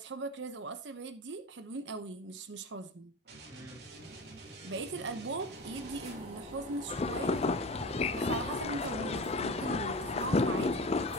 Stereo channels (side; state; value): both; normal; correlation 0.30